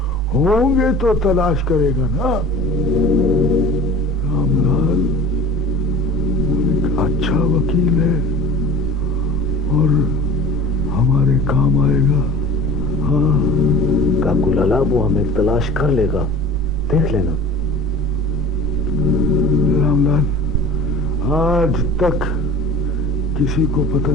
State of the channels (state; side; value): normal; both; correlation 0.41